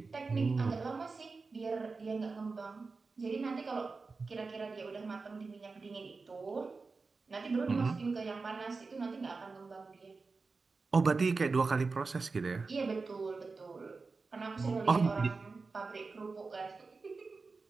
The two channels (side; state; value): left; quieter; 4.2 dB